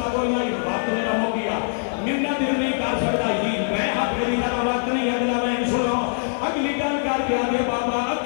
کوئی نہیں وقت میرا ہو گیا ممنا دل نہیں کر سکتا جی میں حق میری طرح وقت نہیں اگلا میں سنو اگلی گل کر کے آدھے بابا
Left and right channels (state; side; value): silent; right; digital silence